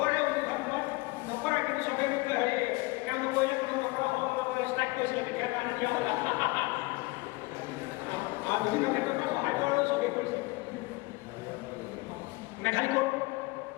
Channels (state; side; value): quieter; right; 24.2 dB